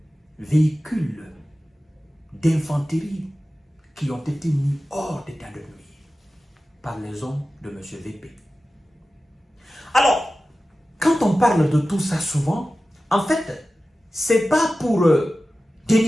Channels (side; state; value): both; normal; correlation 0.95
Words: véhicules d'infanterie qui ont été mis hors d'état de nuire par les hommes de M. VP. Alors, quand on parle de tout ça souvent, en fait, c'est pas pour